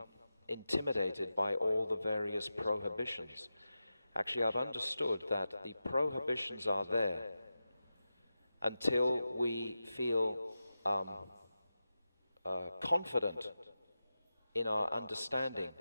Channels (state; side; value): inverted; both; correlation -0.92